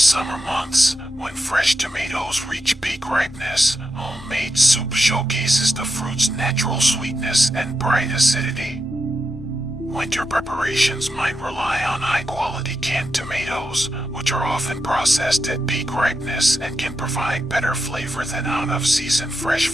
months, when fresh tomatoes reach peak ripeness, homemade soup showcases the fruit's natural sweetness and bright acidity. Winter preparations might rely on high-quality canned tomatoes, which are often processed at peak ripeness and can provide better flavor than out-of-season fresh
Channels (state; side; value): normal; both; correlation 0.86